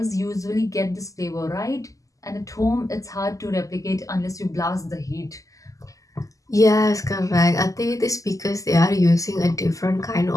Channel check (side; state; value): right; late; 0.16 ms